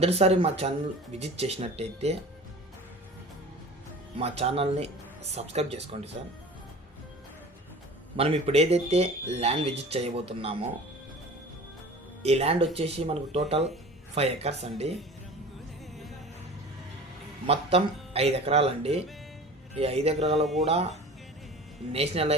మా channel visit చేసినట్టయితే మా ఛానల్ని సబ్స్క్రైబ్ చేసుకోండి సార్. మనం ఇప్పుడు ఏదైతే ల్యాండ్ విజిట్ చేయబోతున్నామో ఈ ల్యాండ్ వచ్చేసి మనకు టోటల్ 5 ఎకర్స్ అండి. మొత్తం 5 ఎకరాలండి. ఈ 5 ఎకరాలు కూడా నేషనల్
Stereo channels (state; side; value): normal; both; correlation 0.40